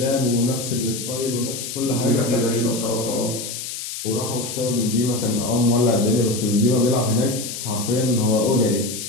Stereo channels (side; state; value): left; noise; hiss, 7 dB below the sound